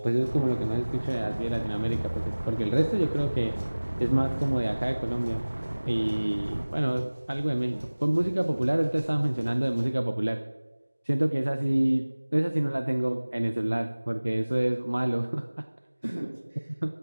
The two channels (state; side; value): inverted; both; correlation -1.00